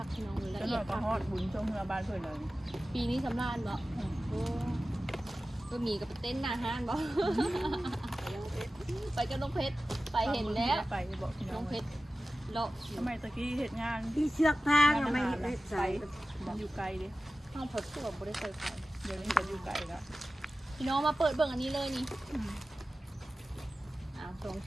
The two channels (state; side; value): normal; both; correlation 0.95